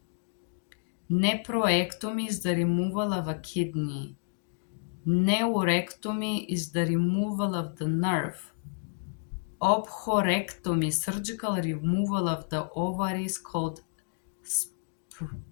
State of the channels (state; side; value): silent; right; digital silence